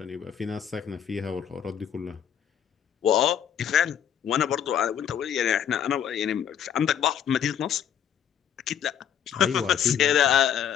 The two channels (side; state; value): right; quieter; 9.0 dB